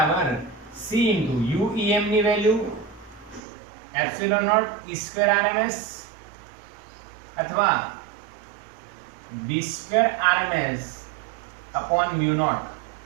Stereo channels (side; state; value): left; drops out; at 3.4 s